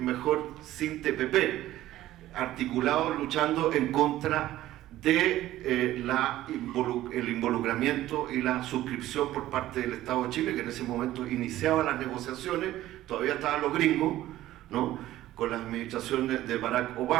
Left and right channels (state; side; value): quieter; left; 14.6 dB